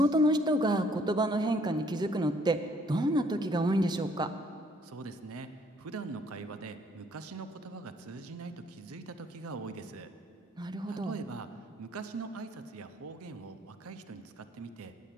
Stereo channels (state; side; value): normal; both; correlation 0.64